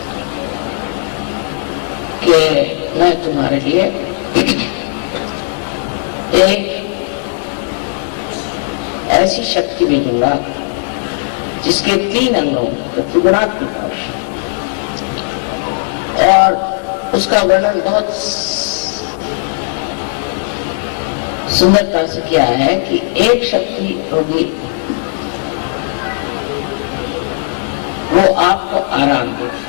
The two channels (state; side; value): silent; right; digital silence